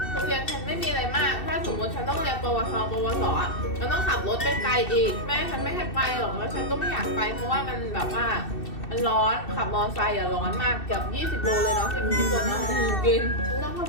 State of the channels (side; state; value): right; late; 2.7 ms